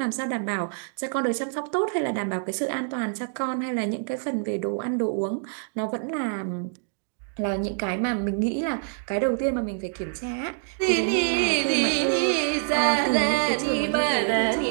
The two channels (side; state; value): left; silent; digital silence